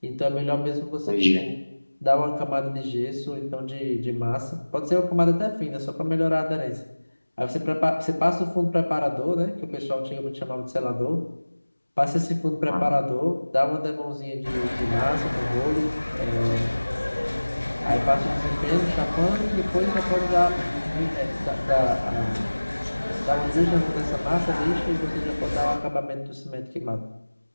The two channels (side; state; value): both; inverted; correlation -1.00